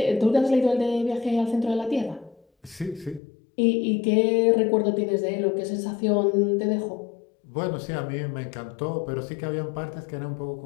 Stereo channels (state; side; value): drops out; right; at 3.2 s